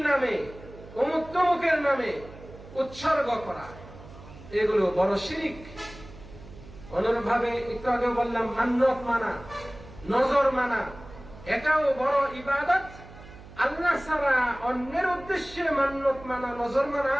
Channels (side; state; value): right; noise; hum, 18 dB below the sound